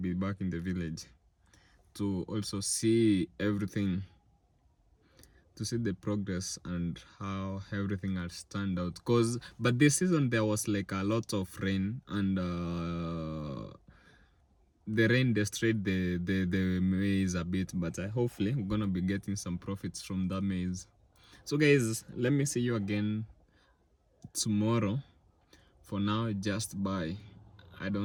back in the village to also see everything, to see the progress and how everything has turned out. But this season there was like a lot of rain, and the rain destroyed the maize a bit, but hopefully we're gonna be getting some profits from that maize. So guys, let me see you again tomorrow. For now, just bye. I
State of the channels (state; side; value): identical; both; correlation 1.00